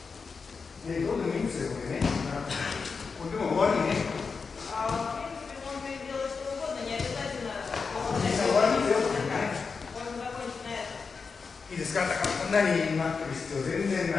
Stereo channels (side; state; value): right; quieter; 5.0 dB